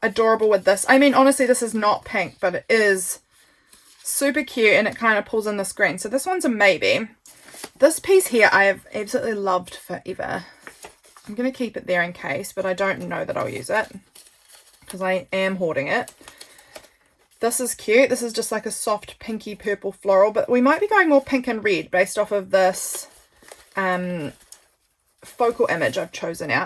adorable with this. I mean, honestly, this is not pink, but it is super cute and it kind of pulls in this green. So this one's a maybe. This piece here I have absolutely loved forever. I'm going to keep it there in case, but I don't know that I'll use it because I am hoarding it. This is cute. This is just like a soft pinky purple floral, but we might be going more pink and red based off of this focal image I've chosen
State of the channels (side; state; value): both; identical; correlation 1.00